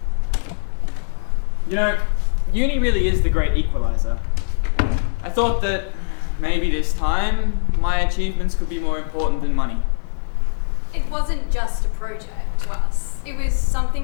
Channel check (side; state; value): right; silent; digital silence